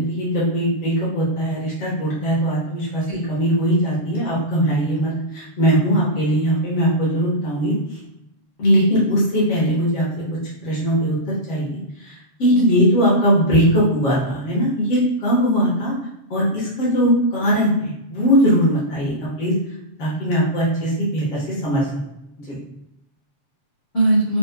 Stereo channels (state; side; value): late; right; 7.5 ms